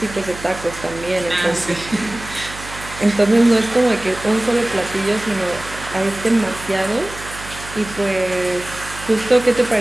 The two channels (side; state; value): right; noise; hum, 14 dB below the sound